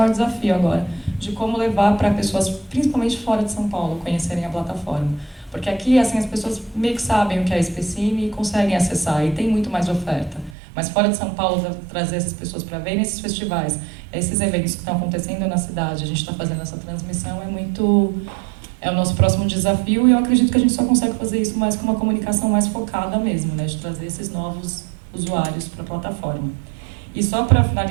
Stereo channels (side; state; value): left; drops out; at 10.6 s